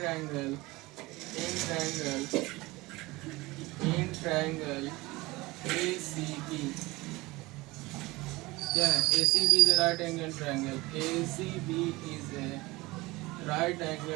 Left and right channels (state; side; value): quieter; left; 21.4 dB